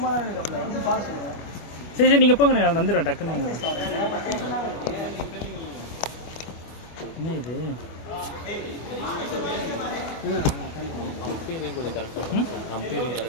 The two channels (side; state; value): right; late; 25 ms